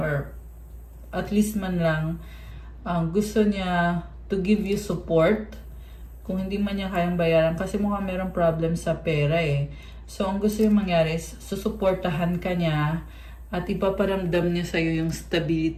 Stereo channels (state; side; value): identical; both; correlation 1.00